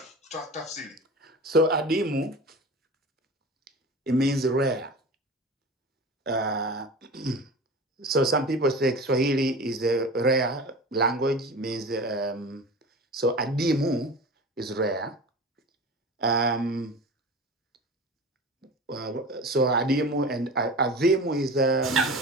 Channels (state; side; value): normal; both; correlation 0.34